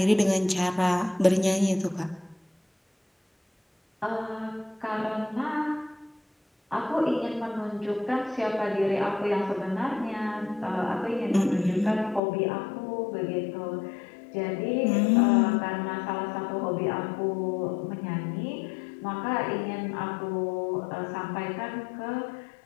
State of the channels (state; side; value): drops out; right; at 12.2 s